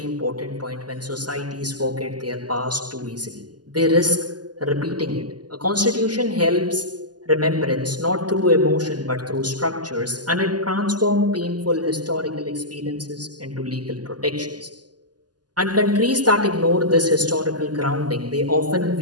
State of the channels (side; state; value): left; late; 0.70 ms